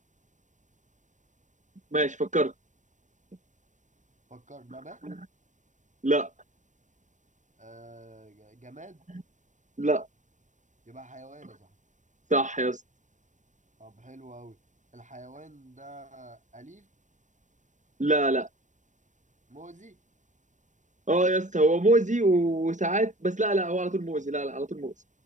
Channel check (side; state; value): left; late; 0.36 ms